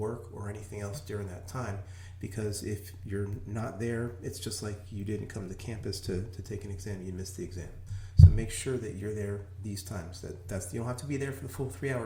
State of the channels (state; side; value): identical; both; correlation 1.00